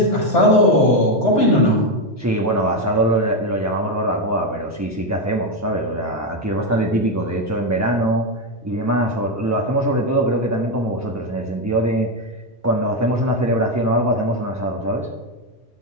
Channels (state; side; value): normal; both; correlation 0.07